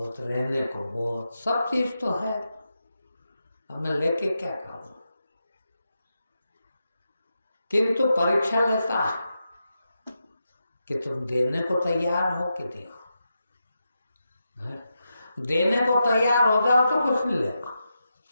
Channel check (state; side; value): inverted; both; correlation -0.88